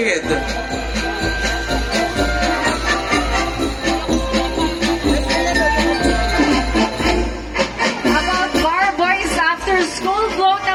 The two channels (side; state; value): both; identical; correlation 1.00